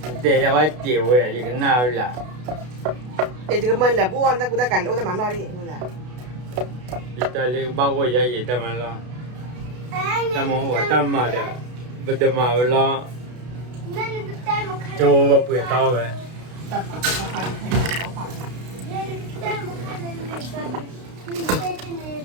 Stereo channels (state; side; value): late; left; 32 ms